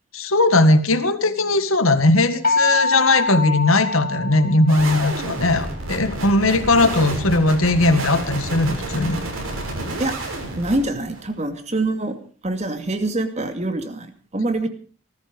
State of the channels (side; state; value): both; normal; correlation 0.26